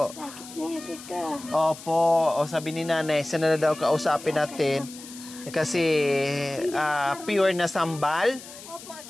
Opo. O sabi ni Nanay, sana na daw kausapin natin. Kasi pure na sambal.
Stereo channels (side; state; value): left; noise; hiss, 16 dB below the sound